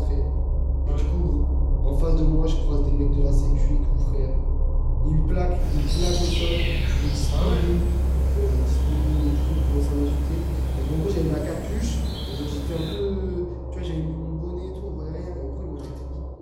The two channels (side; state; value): both; identical; correlation 1.00